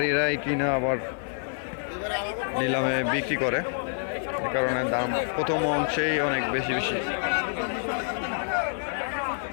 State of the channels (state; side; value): silent; right; digital silence